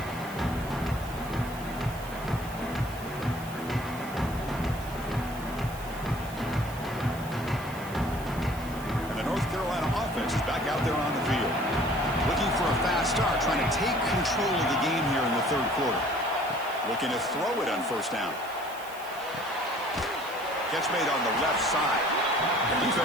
Out there on the field. Looking for a fast start, trying to take control of the game here in the 3rd quarter. Looking to throw it on first down. Catch made on the left side. The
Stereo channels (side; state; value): right; noise; hiss, 18 dB below the sound